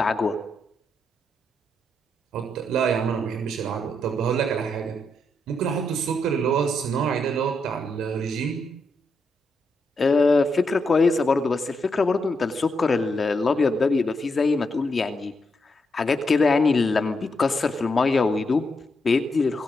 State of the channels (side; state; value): both; normal; correlation 0.81